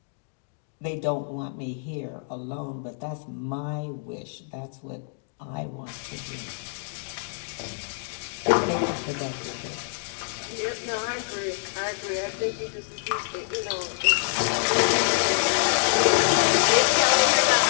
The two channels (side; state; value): right; silent; digital silence